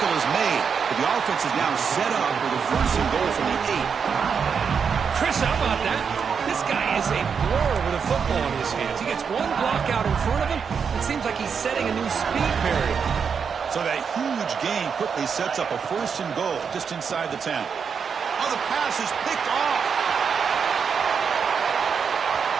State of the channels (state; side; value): quieter; left; 6.4 dB